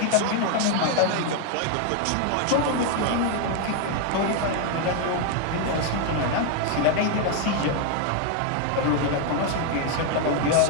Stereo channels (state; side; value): different; both; correlation 0.01